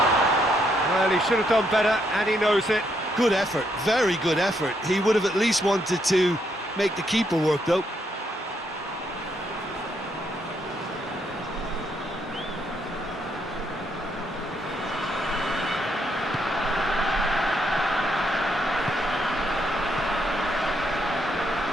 Well, he should have done better, and he knows it. Good effort, very good effort. He would have at least wanted to make the keeper work, though.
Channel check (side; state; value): both; normal; correlation 0.75